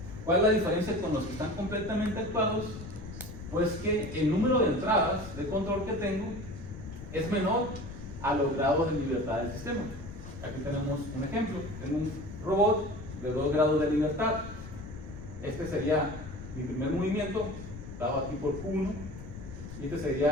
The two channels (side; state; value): left; noise; rumble, 12 dB below the sound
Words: cuál es la diferencia con los que están completamente actuados? Pues que el número de entradas de control que tengo es menor a los grados de libertad del sistema. Aquí tenemos un ejemplo. Tengo un robot de 2 grados de libertad. Este sería mi primer movimiento, dado aquí por Q1, y este